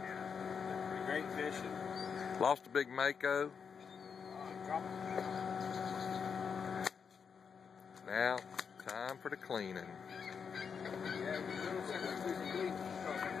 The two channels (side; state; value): right; quieter; 6.4 dB